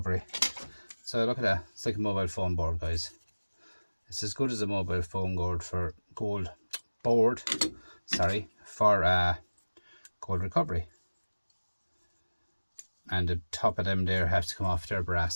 So look at that. It's like a mobile phone board, guys. It's as good as a mobile phone board for gold recovery. And the top of them there have to come off their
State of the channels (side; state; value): both; inverted; correlation -1.00